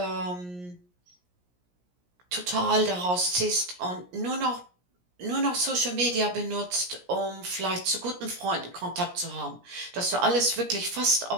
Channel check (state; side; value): late; left; 17 ms